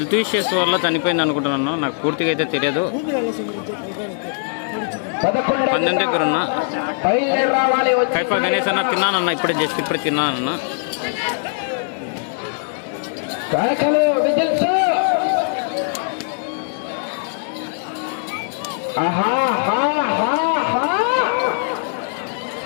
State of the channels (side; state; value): right; silent; 65 dB below the other